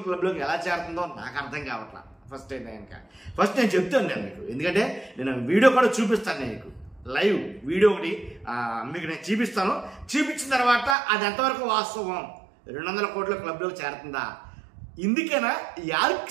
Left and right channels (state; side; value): drops out; left; at 11.0 s